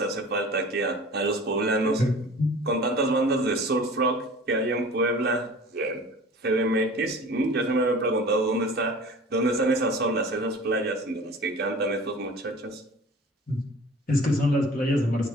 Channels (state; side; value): normal; both; correlation 0.43